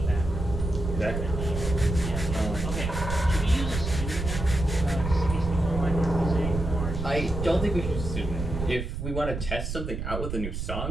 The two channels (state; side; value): noise; right; rumble, 4 dB below the sound